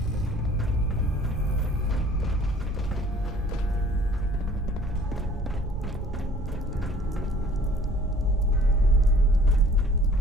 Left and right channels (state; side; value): normal; both; correlation 0.53